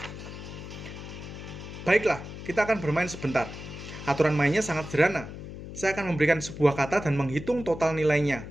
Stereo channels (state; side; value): noise; left; hum, 11 dB below the sound